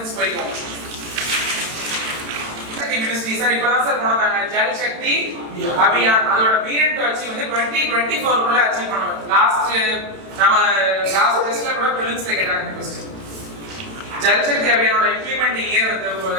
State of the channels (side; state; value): left; late; 31 ms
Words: போய்க்கும். Ministry sir இப்பதான் சார் போனாங்க ஜல் சக்தி அபியான் அதோட பீரியட் வச்சு வந்து 2024 குள்ள அச்சீவ் பண்ணுவோம். லாஸ்ட் டெஸ்ட்ல கூட பிலிம்ஸ்ல கேட்டாங்க question. Jal Shakti அபியானோட implementing year